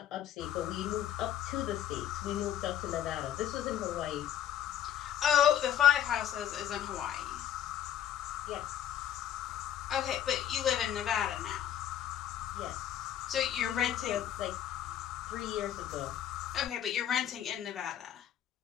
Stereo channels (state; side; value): quieter; right; 10.6 dB